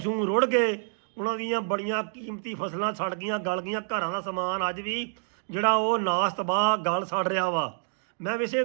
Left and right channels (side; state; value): left; silent; digital silence